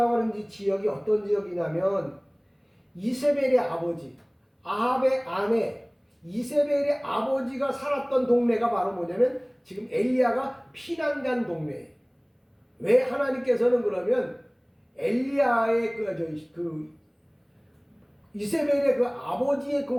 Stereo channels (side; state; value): both; identical; correlation 1.00